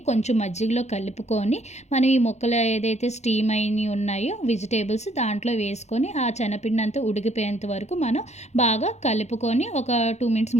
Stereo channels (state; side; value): late; right; 0.33 ms